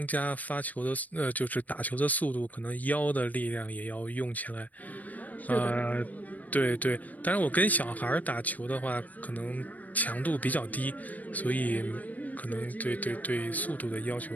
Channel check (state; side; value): late; right; 0.076 ms